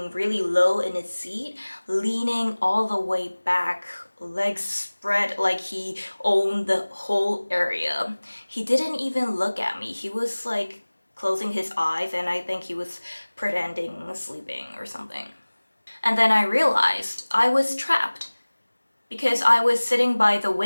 really low in his seat, leaning all the way back, legs spread like he owned the whole area. He didn't even look at me. He was like closing his eyes, and I think he was pretending sleeping or something. And then I realized I was trapped. Because I was sitting by the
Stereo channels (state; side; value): inverted; both; correlation -1.00